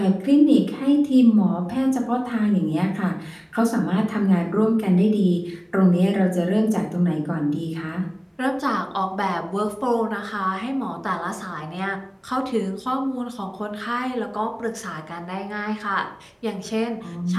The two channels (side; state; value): both; identical; correlation 1.00